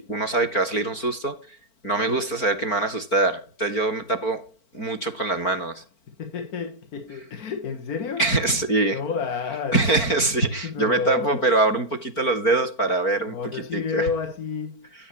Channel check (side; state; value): right; late; 4.4 ms